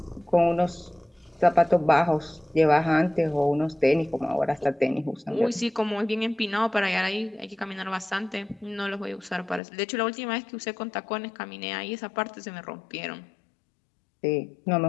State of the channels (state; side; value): drops out; right; at 9.6 s